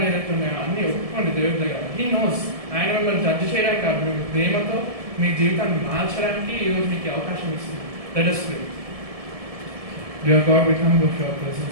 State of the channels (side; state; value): left; late; 1.7 ms